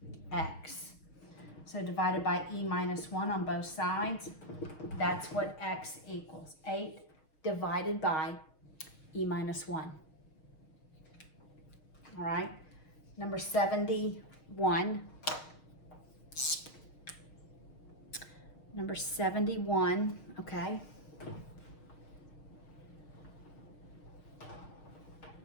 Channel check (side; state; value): right; late; 6.4 ms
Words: x. So divided by e minus 1 on both sides, that's what x equals. 8 divided by e minus 1. All right, number 71. Number 71, okay.